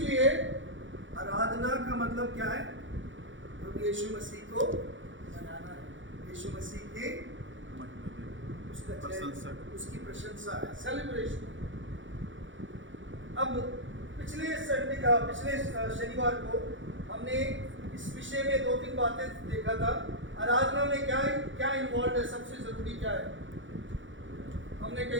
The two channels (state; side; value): late; left; 0.56 ms